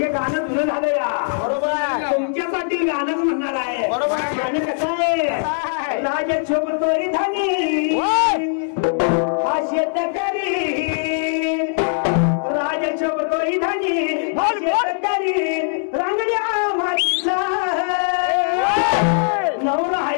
गाणं जुनं झालं या. बरोबर तुमच्यासाठी गाणंच म्हणणार आहे. बरोबर. गाणं कसं आहे? राजा शोभतोय धनी हा शेतकरी, राजा शोभतोय धनी हा शेतकरी, रांगड्या मातीचा नवरा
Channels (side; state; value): right; silent; digital silence